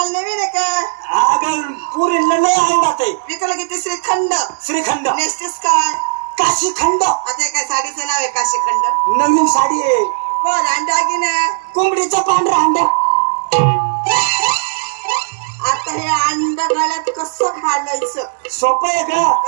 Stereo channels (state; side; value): silent; left; 69 dB below the other